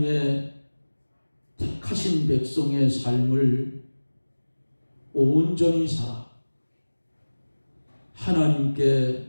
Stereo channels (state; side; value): inverted; both; correlation -1.00